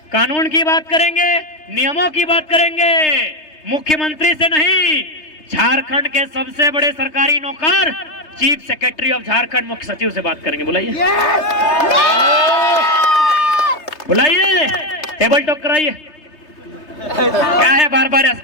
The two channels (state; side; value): late; right; 3.3 ms